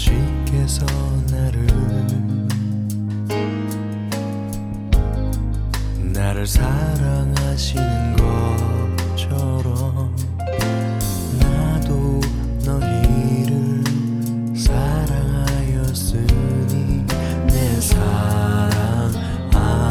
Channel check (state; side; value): identical; both; correlation 1.00